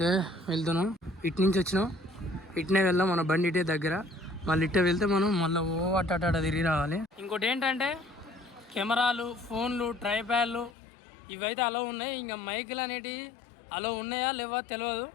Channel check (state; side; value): drops out; right; at 10.7 s